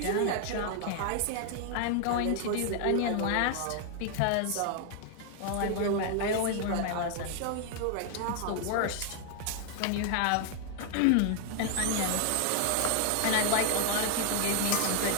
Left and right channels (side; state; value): both; different; correlation 0.00